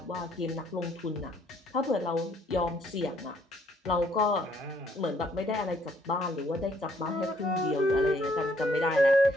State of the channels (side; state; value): both; normal; correlation 0.66